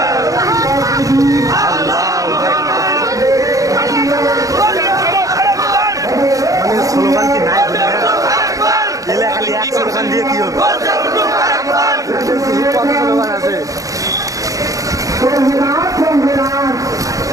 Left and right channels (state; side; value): late; left; 0.16 ms